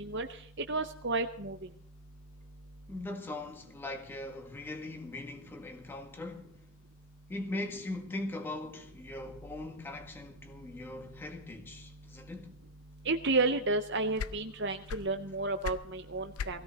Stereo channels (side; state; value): both; normal; correlation -0.02